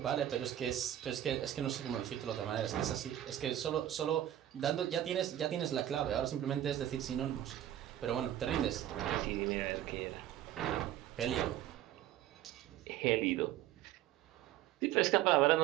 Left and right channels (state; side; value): quieter; left; 12.2 dB